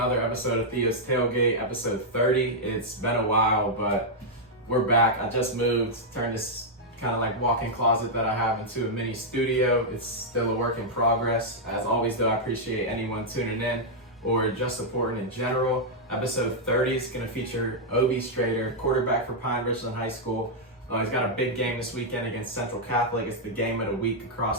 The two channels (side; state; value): both; normal; correlation -0.05